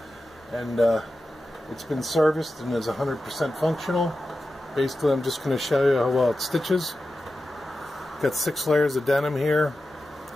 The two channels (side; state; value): both; normal; correlation 0.92